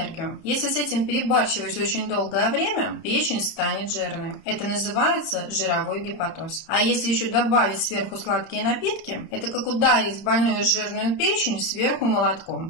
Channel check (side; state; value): right; late; 31 ms